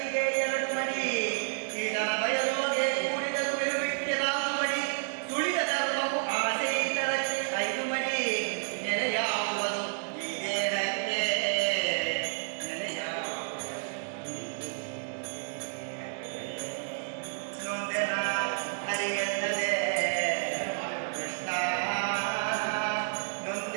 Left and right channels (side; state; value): left; silent; digital silence